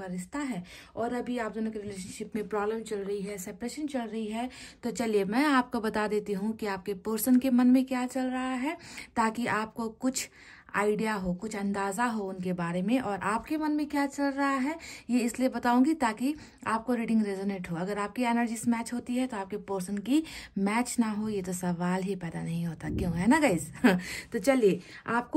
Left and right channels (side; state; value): both; identical; correlation 1.00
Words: रिश्ता है और अभी आप दोनों के रिलेशनशिप में प्रॉब्लम चल रही है, सेपरेशन चल रही है, तो चलिए मैं आपको बता देती हूँ कि आपके पर्सन के मन में क्या चल रहा है, ताकि आपको कुछ आइडिया हो, कुछ अंदाजा हो उनके बारे में। और आपके मन में क्या चल रहा है ये इसलिए बताऊंगी ताकि आपको रीडिंग रेजोनेट हो। अगर आपकी एनर्जीज मैच होती है तो आपके पर्सन की मैच ना हो ये तो सवाल ही पैदा नहीं होता, क्यों, है ना गाइस। तो चलिए,